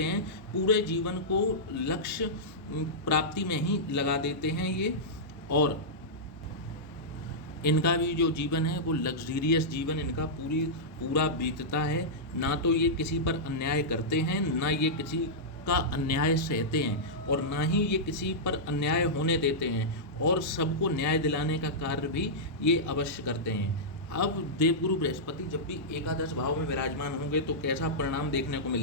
हैं, पूरे जीवन को लक्ष्य प्राप्ति में ही लगा देते हैं ये। और इनका भी जो जीवन है वो लग्जरियस जीवन इनका पूरा बीतता है। ना तो ये किसी पर अन्याय करते हैं, ना ये किसी का अन्याय सहते हैं और ना ही ये किसी पर अन्याय होने देते हैं, और सबको न्याय दिलाने का कार्य भी ये अवश्य करते हैं। अब देवगुरु बृहस्पति जब भी एकादश भाव में विराजमान होंगे तो कैसा परिणाम देखने को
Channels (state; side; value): normal; both; correlation -0.12